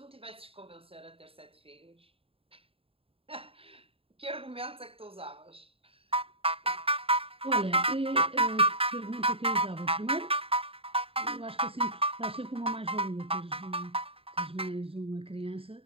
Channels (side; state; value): left; late; 0.27 ms